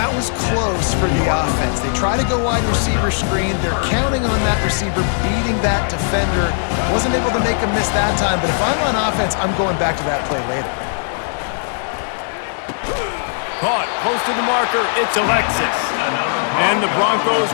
was close for the offense. They try to go wide receiver screen. They're counting on that receiver beating that defender. Wasn't able to make him miss that time, but if I'm on offense, I'm going back to that play later. Caught close to the marker. It's Alexis. And the Broncos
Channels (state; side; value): silent; right; digital silence